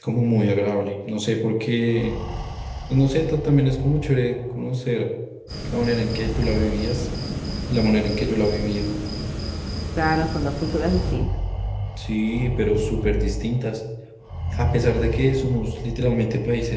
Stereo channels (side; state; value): both; identical; correlation 1.00